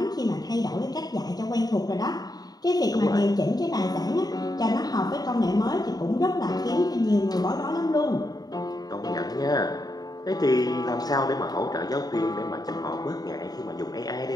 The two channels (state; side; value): late; right; 0.19 ms